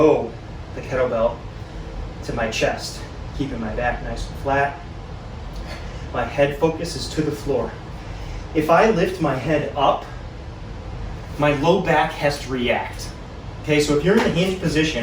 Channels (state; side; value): identical; both; correlation 1.00